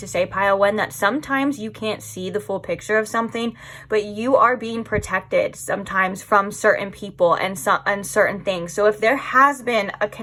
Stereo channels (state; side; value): identical; both; correlation 1.00